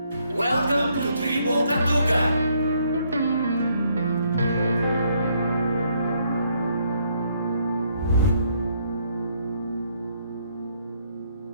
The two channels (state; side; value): inverted; both; correlation -0.71